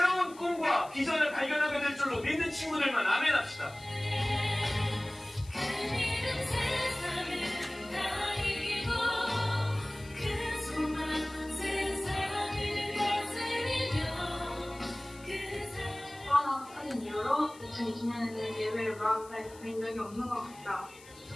꿈과 비전을 발견하게 될 줄로 믿는 친구들만 아멘 합시다. 하는 이유로 2020년에는 예배를 마음에 드린 적이 없는 것 같다.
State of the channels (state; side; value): noise; left; hiss, 22 dB below the sound